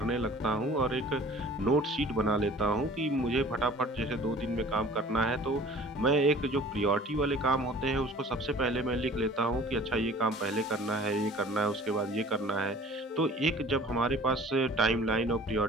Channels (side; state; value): both; normal; correlation 0.47